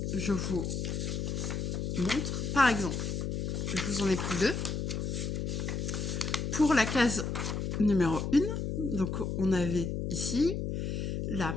Je vous montre, par exemple, je vous en ai pris 2. Pour la case numéro 1, donc on avait ici la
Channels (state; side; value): noise; left; hum, 2 dB below the sound